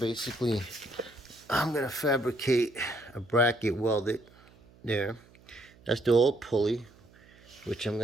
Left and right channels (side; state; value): right; noise; hum, 26 dB below the sound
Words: I'm going to fabricate a bracket welded there. That's the old pulley, which I'm